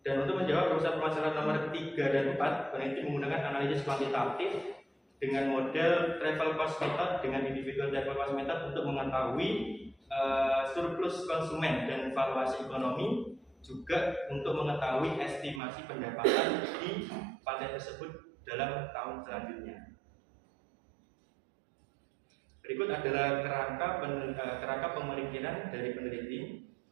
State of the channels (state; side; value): drops out; left; at 15.6 s